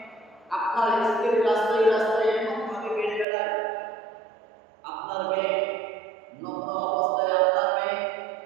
আপনার স্ত্রী রাস্তায় রাস্তায় এমন ভাবে বেড়ে বেড়ায়, আপনার মেয়ে নগ্ন অবস্থায়, আপনার মেয়ে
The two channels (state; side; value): drops out; left; at 3.2 s